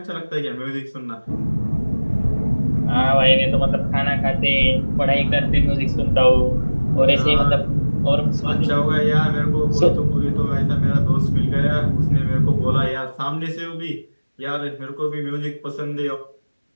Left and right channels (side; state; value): both; inverted; correlation -1.00